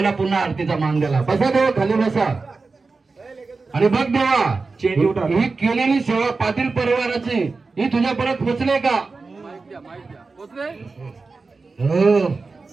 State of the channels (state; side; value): quieter; left; 4.1 dB